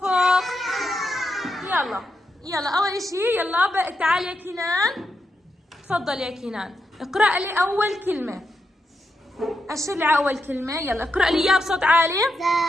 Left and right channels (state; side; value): normal; both; correlation 0.85